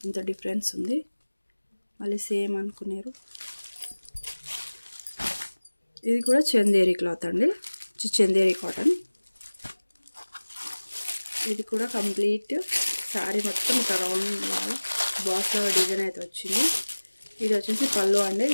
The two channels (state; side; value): inverted; both; correlation -1.00